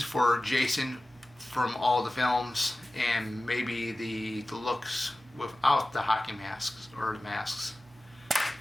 for Jason from all the films, and maybe the looks without the hockey masks or the masks.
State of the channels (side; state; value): right; noise; hum, 29 dB below the sound